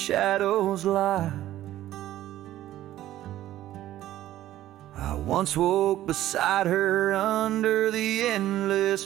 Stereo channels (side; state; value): left; quieter; 13.8 dB